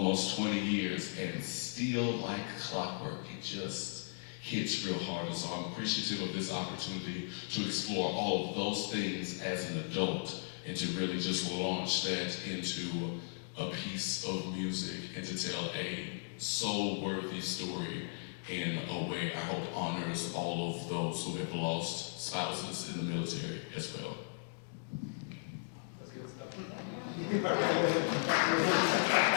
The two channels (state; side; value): silent; right; digital silence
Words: 20 years and still like clockwork, it just hits real hard. And so I'm appreciative of this opportunity to explore all of those things as an adult and to really just launch that into a piece of music and to tell a soul-worthy story in a way I hope honors all of those who have lost spouses in the military as well. That's good stuff.